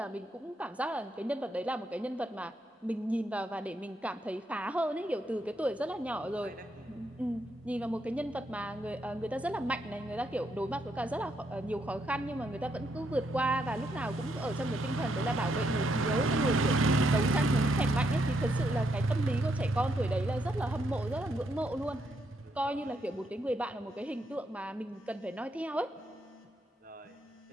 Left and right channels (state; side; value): normal; both; correlation 0.77